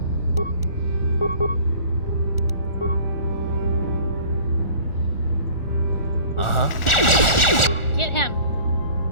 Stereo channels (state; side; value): late; right; 1.4 ms